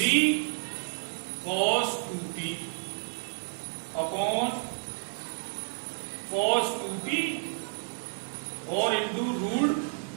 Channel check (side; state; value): left; silent; digital silence